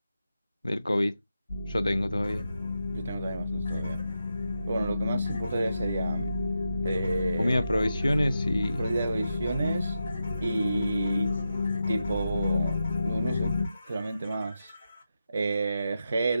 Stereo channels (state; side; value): inverted; both; correlation -0.88